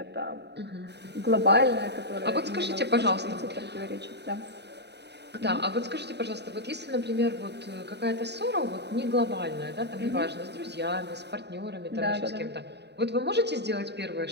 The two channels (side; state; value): left; late; 0.49 ms